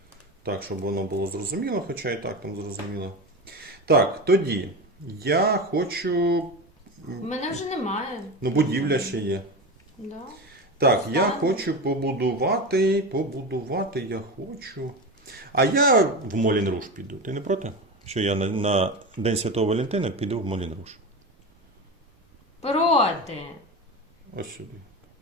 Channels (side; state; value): both; normal; correlation 0.23